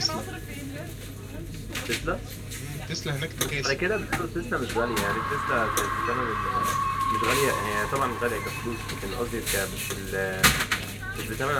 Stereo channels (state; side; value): identical; both; correlation 1.00